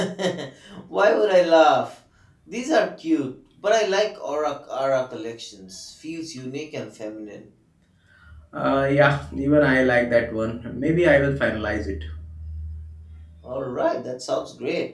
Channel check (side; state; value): both; identical; correlation 1.00